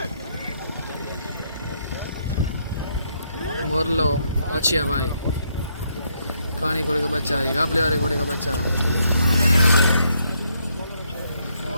मोरलो अच्छिया भाई। कहानी घोड़े का बच्चा है, गापले वाले घोड़े का बच्चा।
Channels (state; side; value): inverted; both; correlation -0.74